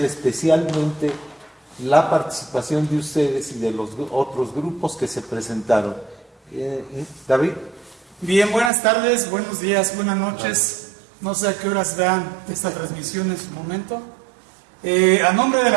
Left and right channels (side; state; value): left; drops out; at 8.7 s